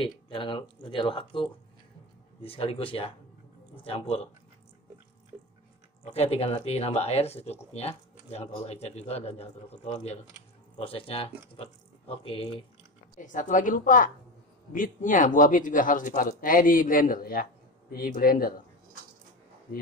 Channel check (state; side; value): normal; both; correlation 0.23